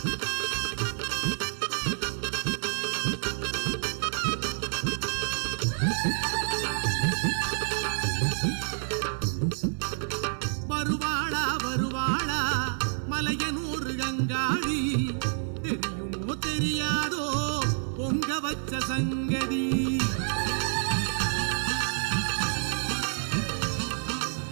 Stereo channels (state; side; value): silent; left; 56 dB below the other